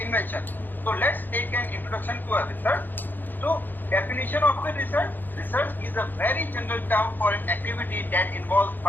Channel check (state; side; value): late; right; 0.088 ms